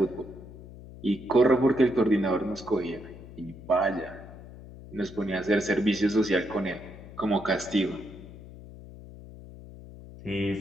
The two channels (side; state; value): left; noise; hum, 16 dB below the sound